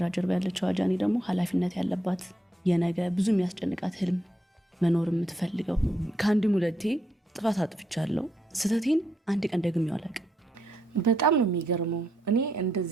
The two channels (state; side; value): normal; both; correlation 0.78